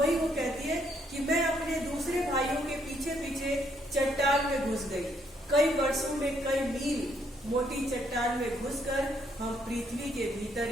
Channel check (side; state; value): both; normal; correlation 0.71